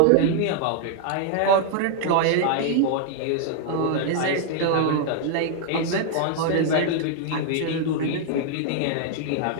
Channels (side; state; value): both; different; correlation 0.00